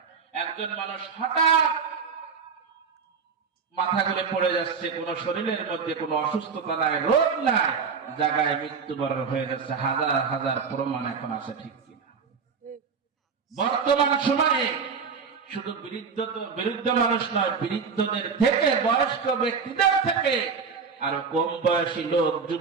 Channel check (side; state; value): left; quieter; 5.6 dB